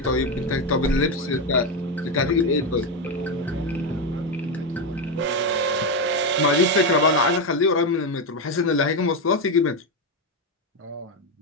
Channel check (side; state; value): both; normal; correlation 0.09